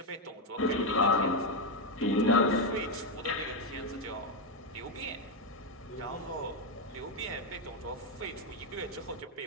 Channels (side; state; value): both; normal; correlation 0.04